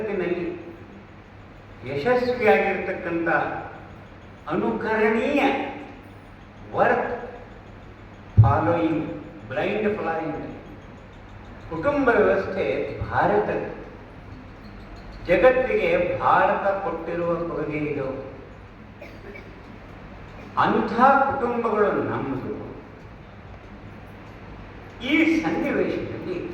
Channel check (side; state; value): both; identical; correlation 1.00